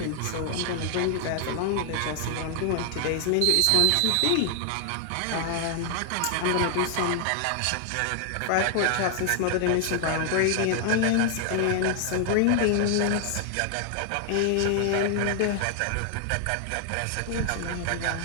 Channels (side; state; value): both; different; correlation 0.00